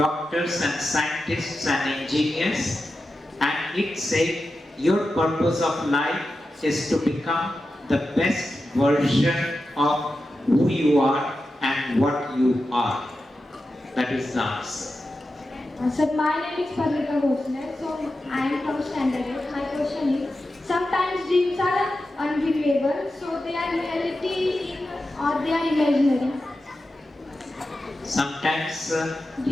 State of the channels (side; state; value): both; normal; correlation 0.91